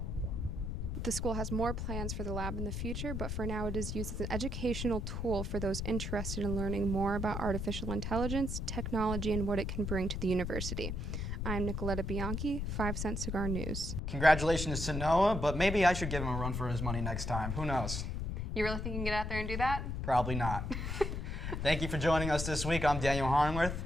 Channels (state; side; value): noise; left; rumble, 3 dB below the sound